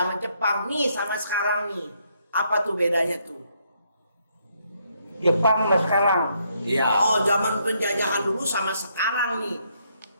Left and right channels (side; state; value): both; inverted; correlation -0.74